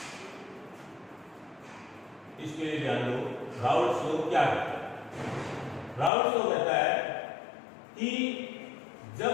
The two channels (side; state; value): right; drops out; at 6.1 s